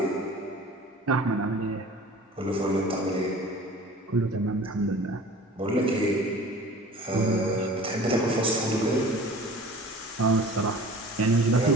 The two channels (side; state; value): both; normal; correlation 0.43